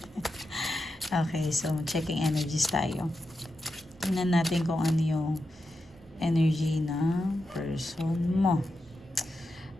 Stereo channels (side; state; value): right; noise; rumble, 26 dB below the sound